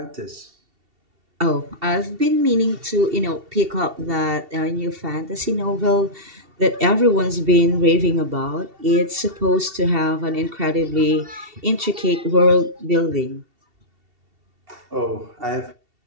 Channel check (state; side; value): late; left; 2.7 ms